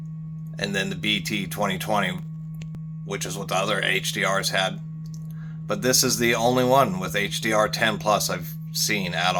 and then the BT 2020, which is what the other HDRs had. But this is the only one with HDR10 plus I've seen at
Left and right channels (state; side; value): identical; both; correlation 1.00